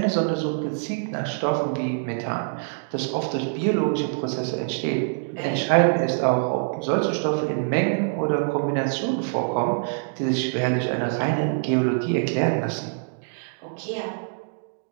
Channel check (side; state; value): left; silent; digital silence